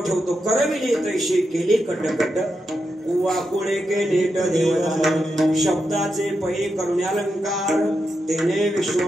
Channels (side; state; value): both; normal; correlation 0.86